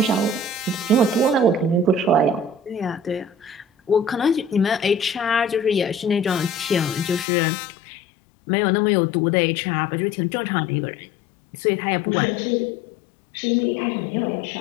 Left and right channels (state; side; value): drops out; right; at 7.2 s